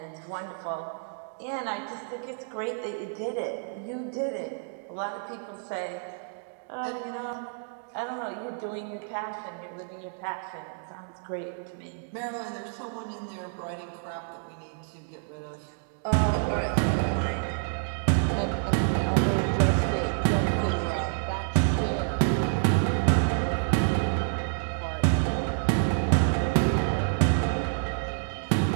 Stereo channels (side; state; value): left; silent; digital silence